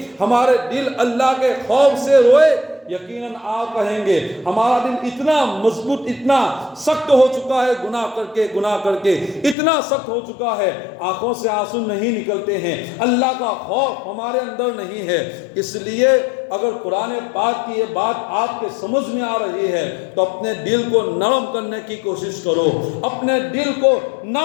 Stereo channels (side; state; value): right; drops out; at 9.6 s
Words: ہمارے دل اللہ کے خوف سے روئے؟ یقیناً آپ کہیں گے ہمارا دل اتنا مضبوط، اتنا سخت ہو چکا ہے، گناہ کر کے اتنا سخت ہو چکا ہے، آنکھوں سے آنسو نہیں نکلتے ہیں، اللہ کا خوف ہمارے اندر نہیں ہے۔ اس لیے اگر قرآن پاک کی یہ بات آپ کے سمجھ میں آ رہی ہے تو اپنے دل کو نرم کرنے کی کوشش کرو، اپنے دل کو